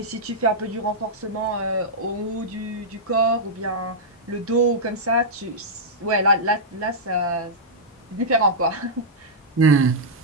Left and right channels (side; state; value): both; normal; correlation -0.09